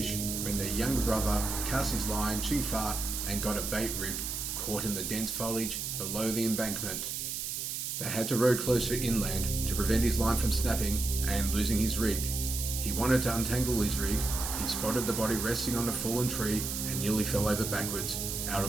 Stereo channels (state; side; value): noise; right; hiss, 3 dB below the sound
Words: when their younger brother cast his line too far and got a bait rig caught in the dense foliage below the embankment. They had to row closer inland to prevent his line from snapping and losing his rig. He wanted to untangle his rig. He spotted the body resting on a fallen tree and nearly fell over backwards out